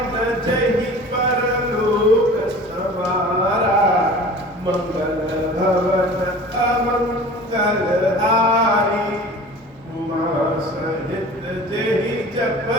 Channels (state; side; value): normal; both; correlation 0.41